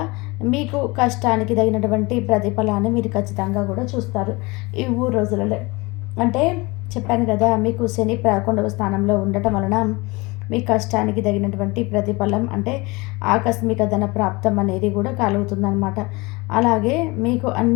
మీకు కష్టానికి తగినటువంటి ప్రతిఫలాన్ని మీరు ఖచ్చితంగా కూడా చూస్తారు ఈ 3 రోజులలో. అంటే చెప్పాను కదా, మీకు శని 11వ స్థానంలో ఉండటం వలన మీ కష్టానికి తగినటువంటి ప్రతిఫలం అంటే ఆకస్మిక ధన ప్రాప్తం అనేది కూడా కలుగుతుందన్నమాట. అలాగే మీకు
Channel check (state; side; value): quieter; right; 24.5 dB